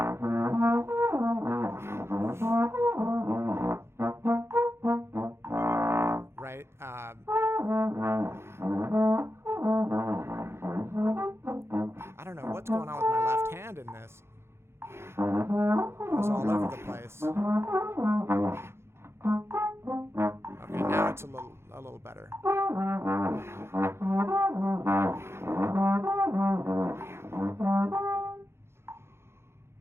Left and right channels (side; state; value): left; late; 0.12 ms